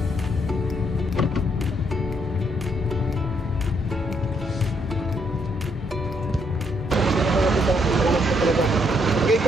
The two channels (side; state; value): both; normal; correlation 0.73